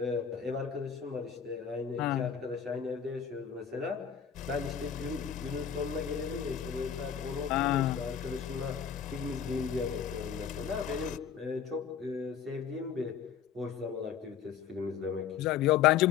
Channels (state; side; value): quieter; right; 8.1 dB